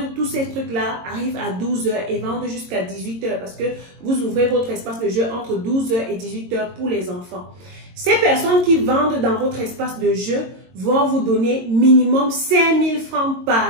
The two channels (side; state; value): left; late; 22 ms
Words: tous ces trucs-là arrivent à 12 h et vendent jusqu'à 18 h parce que vous ouvrez votre espace de jeu entre 12 h et 18 h pour les enfants. Ces personnes qui vendent dans votre espace de jeu vont vous donner minimum 5 000 francs